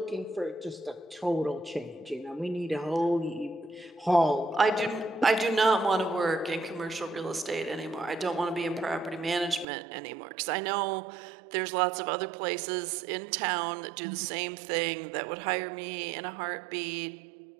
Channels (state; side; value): drops out; left; at 9.7 s